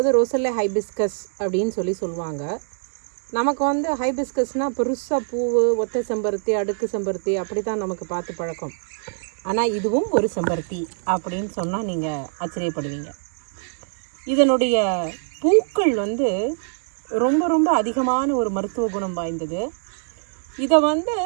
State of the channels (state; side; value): silent; left; 63 dB below the other